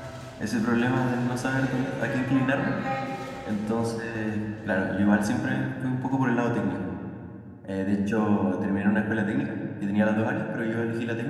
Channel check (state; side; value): identical; both; correlation 1.00